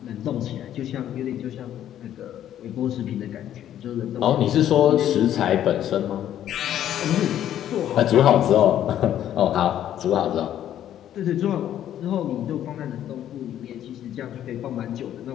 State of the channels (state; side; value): quieter; right; 11.2 dB